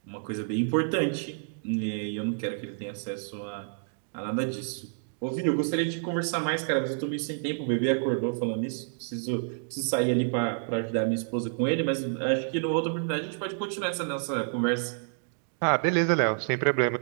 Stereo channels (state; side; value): silent; left; digital silence